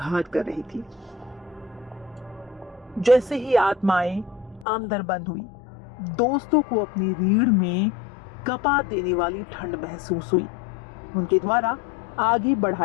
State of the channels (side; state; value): right; drops out; at 4.7 s